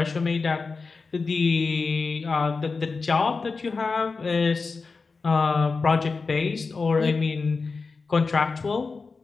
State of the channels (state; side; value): quieter; right; 4.4 dB